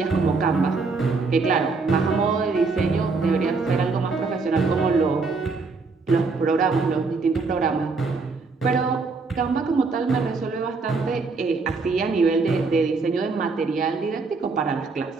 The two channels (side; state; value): left; quieter; 4.2 dB